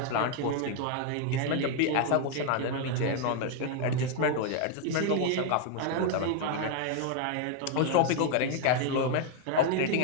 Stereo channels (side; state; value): both; different; correlation 0.00